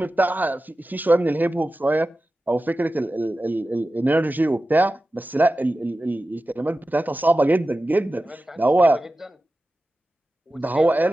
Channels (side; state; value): both; normal; correlation 0.94